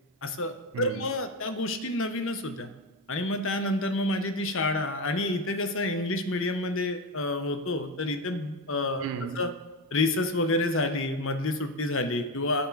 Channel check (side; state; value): both; normal; correlation 0.16